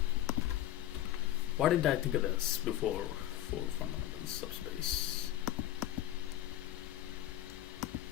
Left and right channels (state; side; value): quieter; right; 13.3 dB